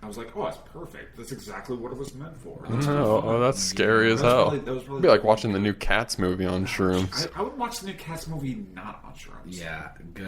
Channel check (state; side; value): identical; both; correlation 1.00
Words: I was like, oh, that's perfect. That's exactly what it was meant for. Oh, that's scary as That was hell. probably- that was probably It'd be like the- watching the new Cats movie on shrooms. I would watch the new Cats movie not on shrooms. Yeah,